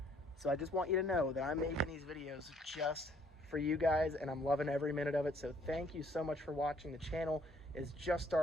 So I just want you to know that I'm making these videos just for you guys, and I'm loving every minute of it. So thank you so much for watching. The channel is just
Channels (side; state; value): both; normal; correlation 0.64